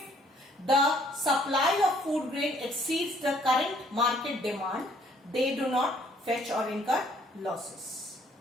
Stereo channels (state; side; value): normal; both; correlation 0.62